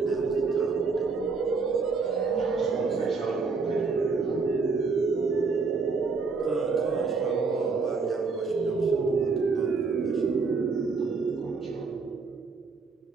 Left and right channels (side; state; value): left; quieter; 4.5 dB